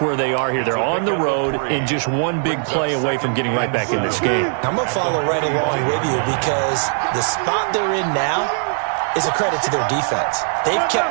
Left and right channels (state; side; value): silent; left; 66 dB below the other